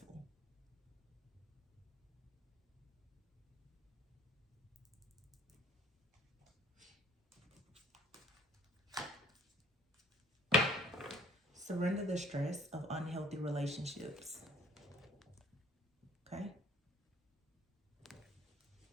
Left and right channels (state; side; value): normal; both; correlation 0.56